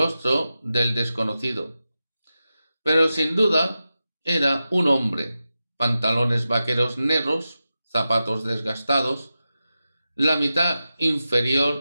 del desconocido, pero sin duda era un hombre: pantalones vaqueros negros, zapatos desgastados, la mitad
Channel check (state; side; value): inverted; both; correlation -0.92